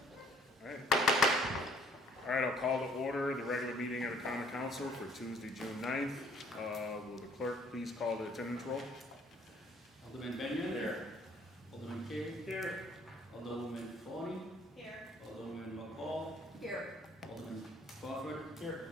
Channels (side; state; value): both; normal; correlation 0.60